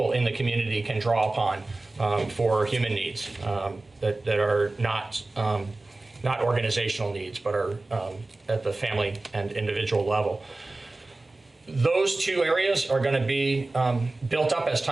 in the community can draw upon for human needs that are not organizational needs, but are at the family and individual level. Those 2 areas are going to be built up as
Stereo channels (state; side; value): quieter; left; 3.1 dB